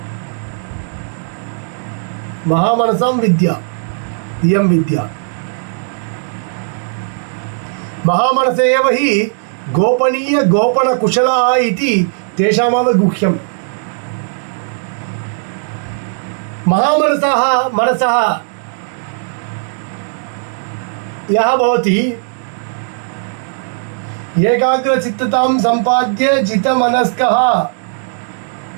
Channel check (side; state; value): left; silent; digital silence